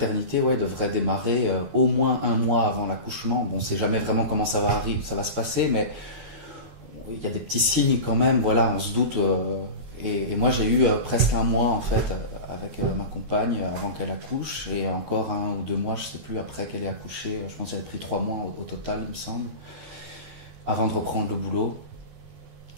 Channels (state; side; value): late; left; 12 ms